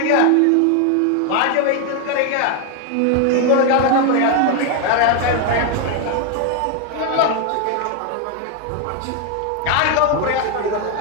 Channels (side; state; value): both; different; correlation 0.01